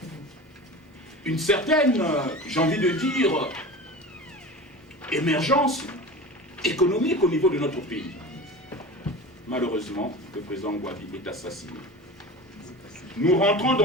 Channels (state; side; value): normal; both; correlation 0.33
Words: une certaine, j'ai envie de dire, émergence économique au niveau de notre pays. Malheureusement, le président Gwabi est assassiné. Nous rentrons